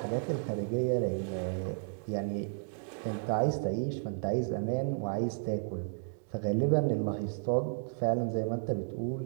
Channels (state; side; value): silent; left; digital silence